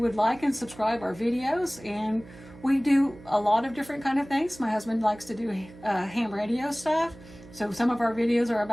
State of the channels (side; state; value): right; noise; hum, 20 dB below the sound